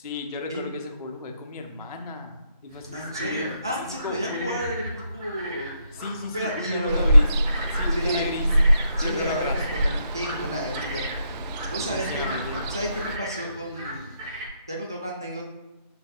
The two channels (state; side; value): inverted; both; correlation -0.77